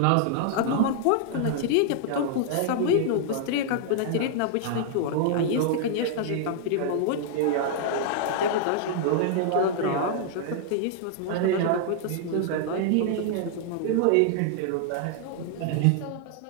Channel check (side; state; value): both; different; correlation 0.00